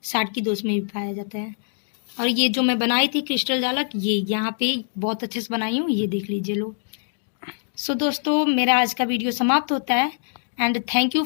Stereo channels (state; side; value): silent; right; digital silence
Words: साटकी दोष में भी पाया जाता है। और ये जो मैं बनाई थी क्रिस्टल जालक, ये यहाँ पे बहुत अच्छे से बनाई हूँ, ये देख लीजिए लोग। सो दोस्तों, मेरा आज का वीडियो समाप्त होता है and thank you